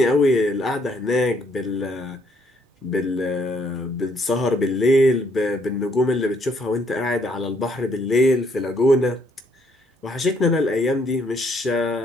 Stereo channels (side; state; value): both; normal; correlation 0.68